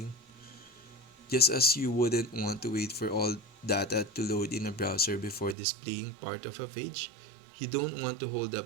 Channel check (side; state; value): left; drops out; at 5.6 s